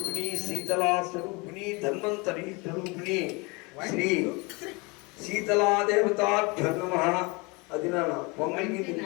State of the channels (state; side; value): quieter; right; 27.5 dB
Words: శీతలా స్వరూపిణి ధన్వంతరి స్వరూపిణి శ్రీ శీతలాదేవతాభ్యో నమః. అది నా పొంగల్కి